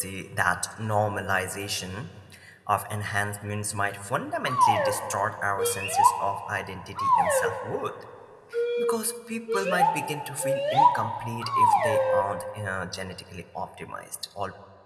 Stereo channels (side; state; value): both; identical; correlation 1.00